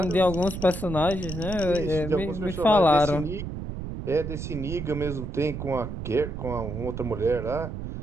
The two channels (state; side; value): noise; right; rumble, 7 dB below the sound